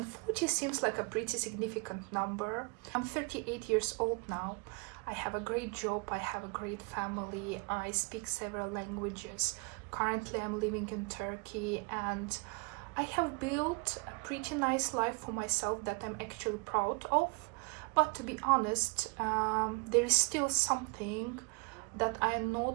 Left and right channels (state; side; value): quieter; left; 31.7 dB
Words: 40 seems like a pretty significant number. I'm 38 years old now. I have a great job, I have a great family, I speak several languages. Currently I'm living in Turkey, and I have built a pretty nice life for myself that I'm actually proud of. But to be honest, there is still something that I am